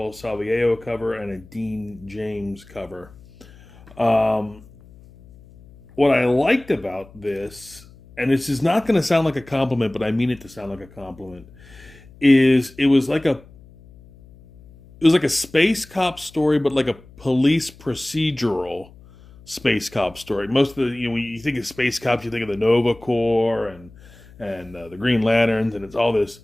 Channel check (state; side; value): noise; left; hum, 23 dB below the sound